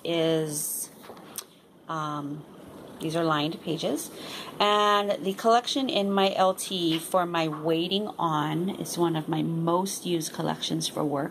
is, these are lined pages. And the collection in my LT for my Waiting On is one of my most used collections for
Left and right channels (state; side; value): identical; both; correlation 1.00